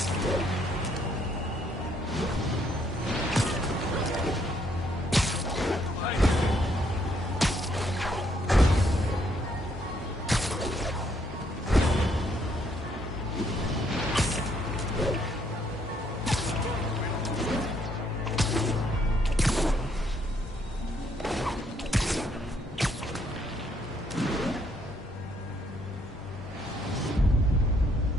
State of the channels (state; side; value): normal; both; correlation 0.70